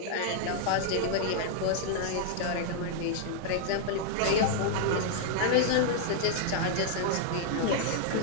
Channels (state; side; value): different; both; correlation -0.01